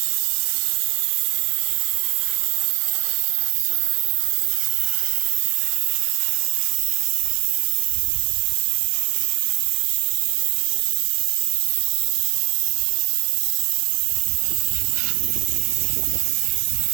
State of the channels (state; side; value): quieter; left; 26.2 dB